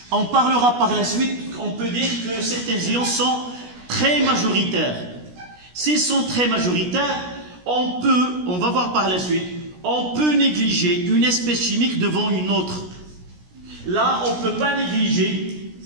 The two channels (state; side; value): late; left; 17 ms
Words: On parlera par la suite, on peut dire que certains ions sont très majoritaires. S'ils sont très majoritaires, on va voir par la suite, on peut négliger une espèce chimique devant une autre. Là, on ne peut pas négliger